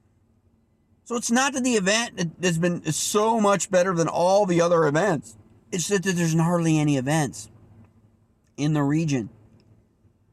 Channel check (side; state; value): both; identical; correlation 1.00